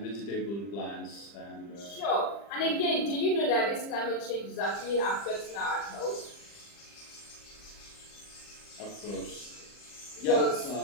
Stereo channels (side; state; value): right; late; 40 ms